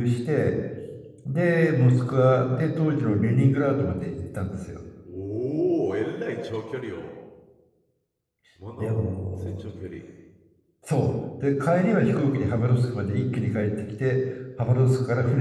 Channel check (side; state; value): both; identical; correlation 1.00